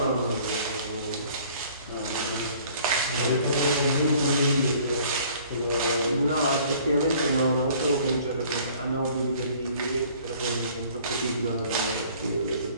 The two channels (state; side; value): inverted; both; correlation -0.54